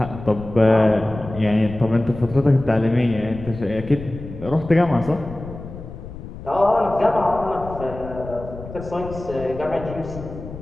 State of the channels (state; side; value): noise; left; rumble, 12 dB below the sound